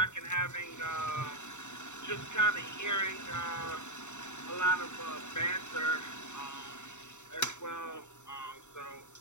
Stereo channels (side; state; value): right; late; 0.84 ms